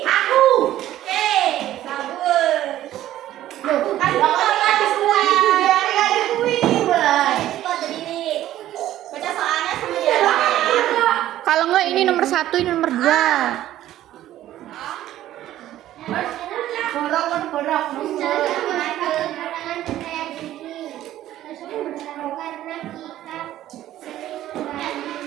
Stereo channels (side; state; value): left; quieter; 13.4 dB